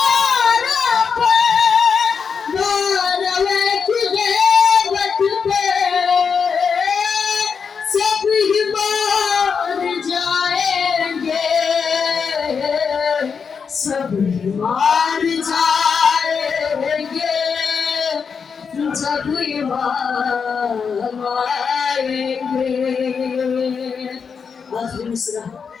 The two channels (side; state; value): right; quieter; 6.0 dB